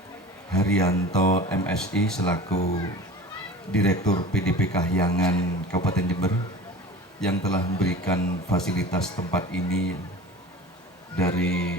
Haryanto MSI selaku Direktur PDP Kahyangan Kabupaten Jember yang telah memberikan fasilitas tempat ini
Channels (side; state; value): both; normal; correlation 0.38